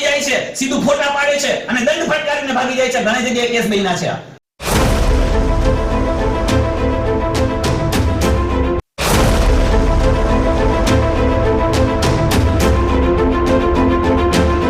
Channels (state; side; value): identical; both; correlation 1.00